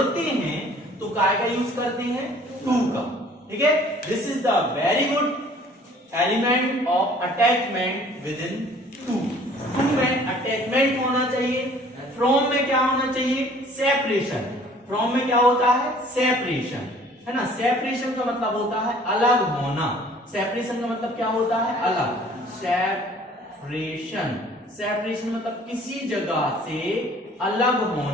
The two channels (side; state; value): both; normal; correlation 0.53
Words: हैं तो काय का यूज करते हैं? टू का. ठीक है. This is the very good element of attachment within to. To में अटैचमेंट होना चाहिए. फ्रॉम में क्या होना चाहिए? सेपरेशन. फ्रॉम में क्या होता है? सेपरेशन, है ना. सेपरेशन का मतलब होता है अलग होना. सेपरेशन का मतलब क्या होता है? अलग. सेपरेशन. सेपरेशन मतलब किसी जगह से अलग